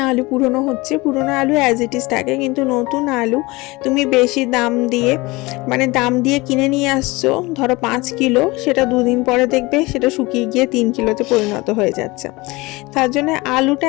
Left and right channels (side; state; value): right; quieter; 22.8 dB